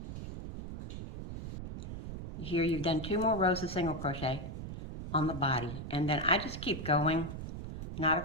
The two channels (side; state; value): right; noise; rumble, 8 dB below the sound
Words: Here you've done 2 more rows of single crochet on the body, and then I just keep going, not